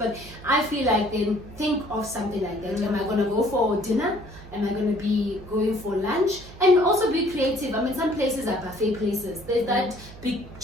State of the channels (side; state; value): right; noise; hum, 17 dB below the sound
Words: I feel like then think of something like that. Am I gonna go for dinner? Am I going to be going for lunch? And also be creative. I mean, some places are buffet places. There's that big